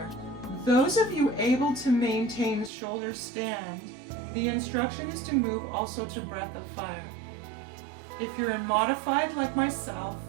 Those of you able to maintain shoulder stand, the instruction is to move also to breath of fire. If you're in modified like myself,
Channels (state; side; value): drops out; left; at 2.7 s